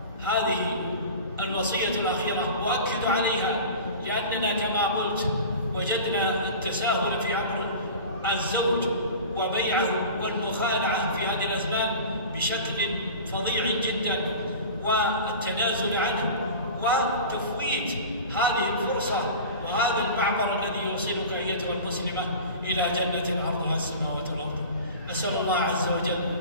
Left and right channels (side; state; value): both; inverted; correlation -0.36